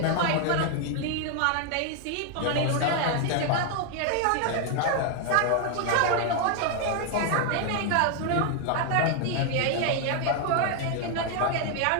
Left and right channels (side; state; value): both; different; correlation 0.00